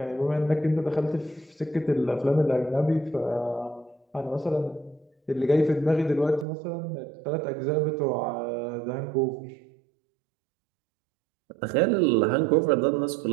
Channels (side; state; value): left; drops out; at 6.5 s